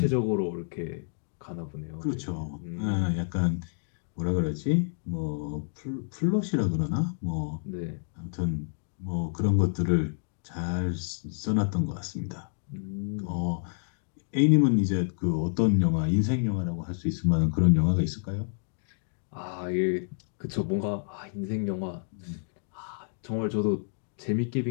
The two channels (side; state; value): right; silent; digital silence